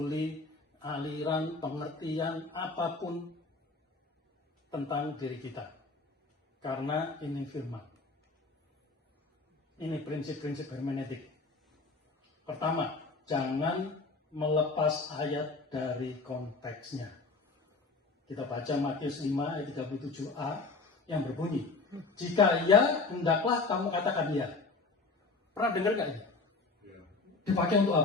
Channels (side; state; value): right; quieter; 3.9 dB